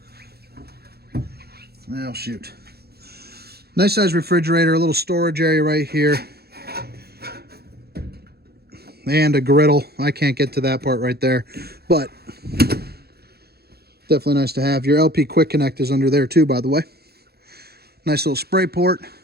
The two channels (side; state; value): left; late; 0.46 ms